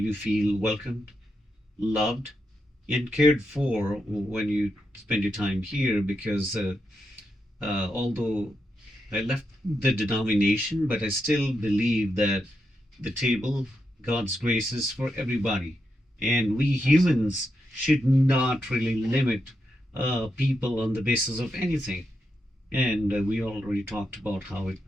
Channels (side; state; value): both; normal; correlation 0.85